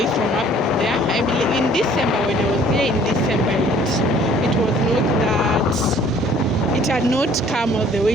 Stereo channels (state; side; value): normal; both; correlation 0.55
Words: from up there. I believe in December, when I was here in December, it was not that, it had not come all the